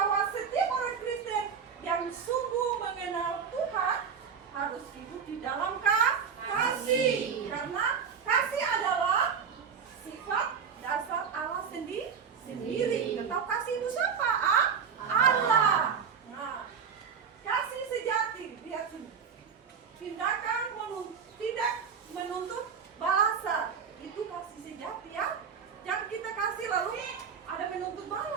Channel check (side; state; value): left; quieter; 6.7 dB